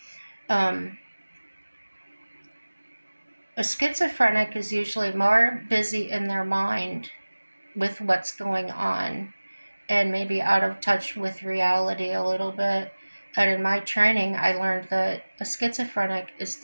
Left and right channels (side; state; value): both; inverted; correlation -1.00